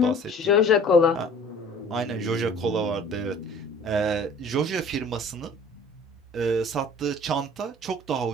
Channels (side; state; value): both; normal; correlation 0.48